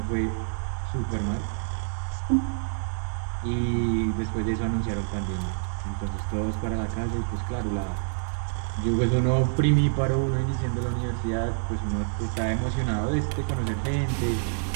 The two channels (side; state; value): left; silent; 60 dB below the other